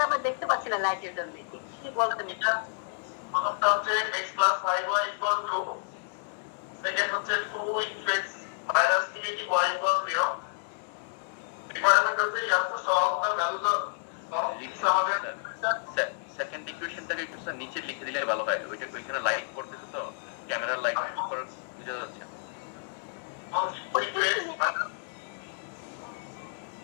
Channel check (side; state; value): right; silent; digital silence